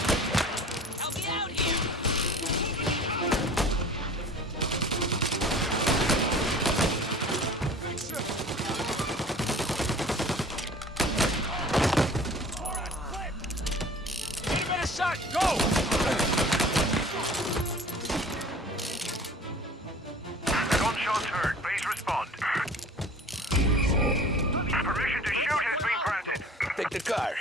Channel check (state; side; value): normal; both; correlation 0.45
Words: Help me out here! Give it a shot, go! Gunshots heard. Please respond. Permission to shoot has been granted. Take the car.